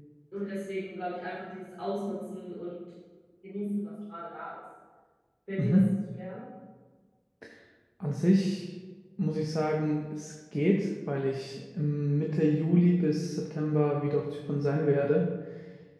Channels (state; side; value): identical; both; correlation 1.00